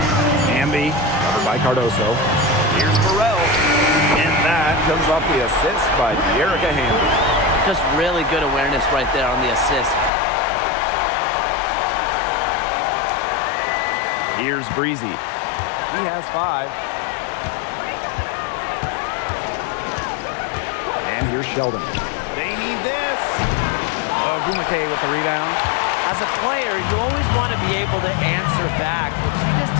Hamby, covered by Cardoso. Here's Burrell. And that comes off the assist by Erica Hamby. Just really good awareness right there on the assist. Here's Breezy. He has 5. And here's Sheldon. They need this. Oh, Gumake with the rebound. As a player, you always want to be able to answer back, but she just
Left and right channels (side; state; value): right; drops out; at 10.1 s